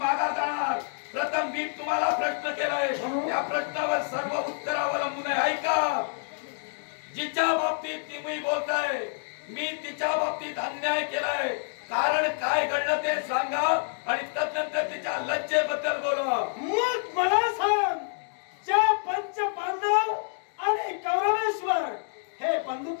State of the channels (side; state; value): right; silent; digital silence